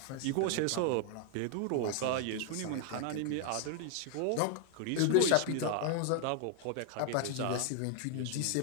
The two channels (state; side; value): different; both; correlation 0.00